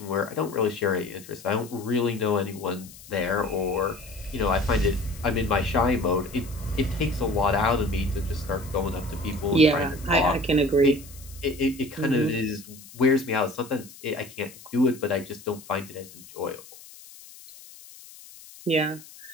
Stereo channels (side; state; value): left; noise; hiss, 19 dB below the sound